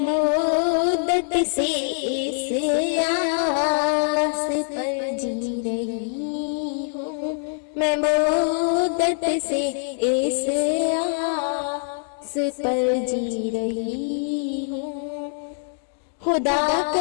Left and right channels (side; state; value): right; silent; digital silence